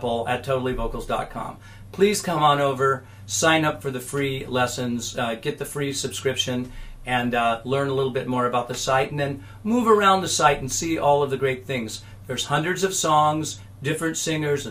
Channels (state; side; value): identical; both; correlation 1.00